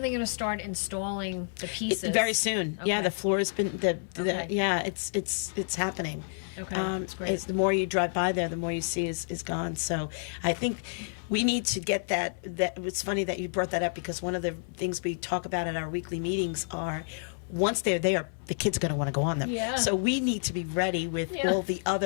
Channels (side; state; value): right; silent; 58 dB below the other